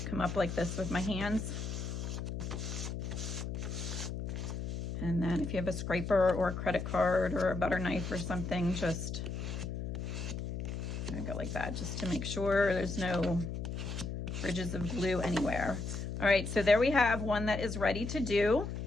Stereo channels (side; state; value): left; noise; hum, 4 dB below the sound